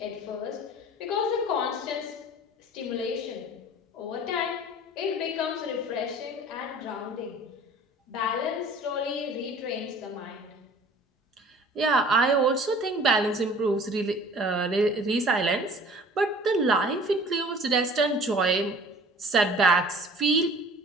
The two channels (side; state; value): both; normal; correlation 0.47